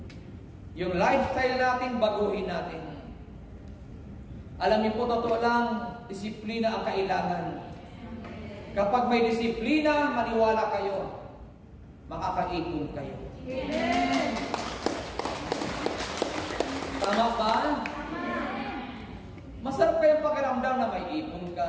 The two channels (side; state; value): both; identical; correlation 1.00